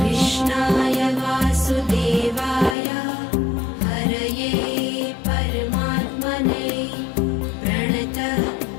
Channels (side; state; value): right; drops out; at 2.8 s